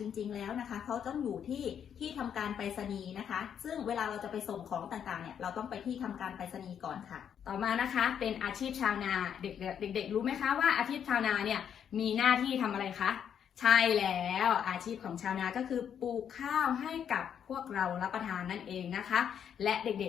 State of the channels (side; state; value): right; quieter; 8.5 dB